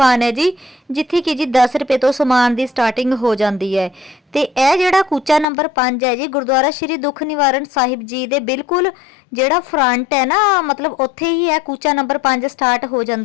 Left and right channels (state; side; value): drops out; right; at 5.5 s